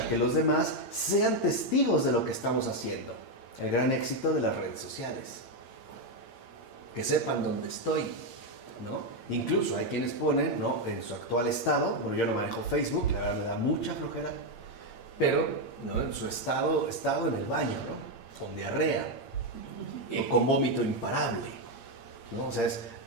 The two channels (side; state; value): right; late; 8.7 ms